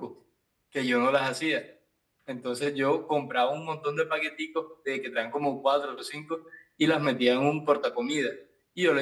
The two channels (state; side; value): identical; both; correlation 1.00